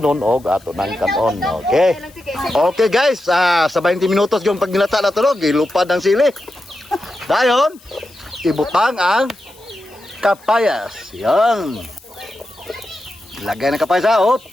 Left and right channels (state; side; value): noise; left; hiss, 26 dB below the sound